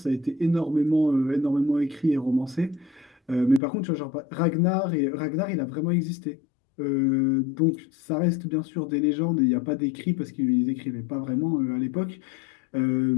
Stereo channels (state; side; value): drops out; right; at 3.6 s